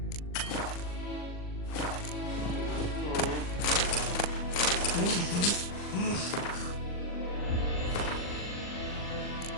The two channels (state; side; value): late; right; 39 ms